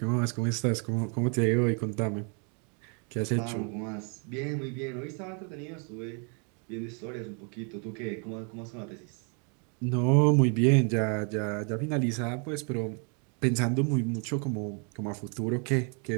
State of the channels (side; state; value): left; quieter; 38.3 dB